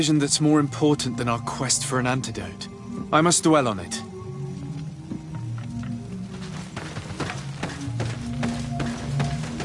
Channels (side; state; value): both; identical; correlation 1.00